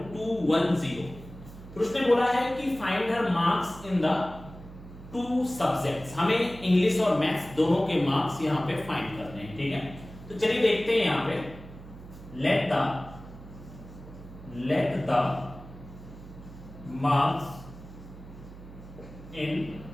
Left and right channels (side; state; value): right; noise; hum, 16 dB below the sound